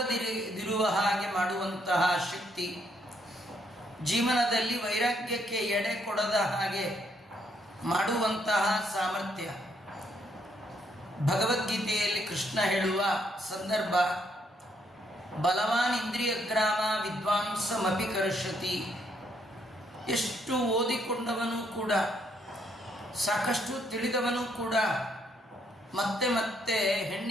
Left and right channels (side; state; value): both; normal; correlation 0.72